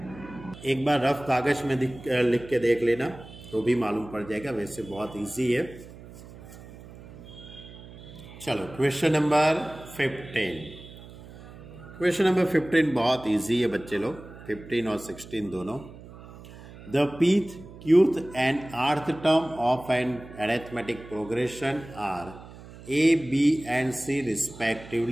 एक बार रफ कागज में लिख के देख लेना तो भी मालूम पड़ जाएगा, वैसे बहुत इजी है। चलो क्वेश्चन नंबर 15, क्वेश्चन नंबर 15 बहुत इजी है बच्चे लोग, 15 और 16 दोनों। The pth, qth and rth term of an arithmetic progression are a, b and c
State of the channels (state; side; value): noise; right; hum, 17 dB below the sound